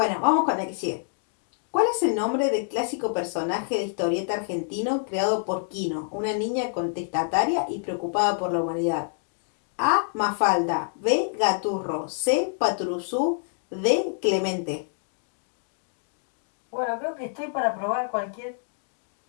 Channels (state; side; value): silent; right; digital silence